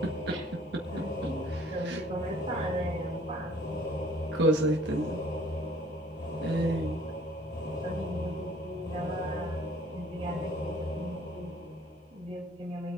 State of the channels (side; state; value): both; normal; correlation 0.56